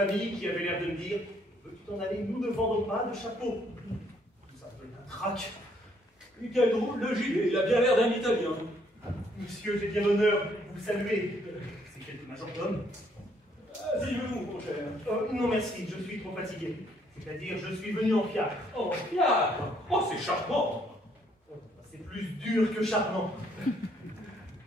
qui avaient l'air de me dire veux-tu t'en aller, nous ne vendons pas de chapeau. Tout ça peut être un trac. Quel drôle de gilet, il a bien l'air d'un Italien. Monsieur, j'ai bien l'honneur de vous saluer. C'est quelque majordome. Asseyez-vous, mon cher. Non, merci, je suis trop fatigué. C'est-à-dire, je suis venu en fiacre. Oh, fiacre. Oh, c'est charmant. C'est plus dur que charmant.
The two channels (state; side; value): normal; both; correlation 0.68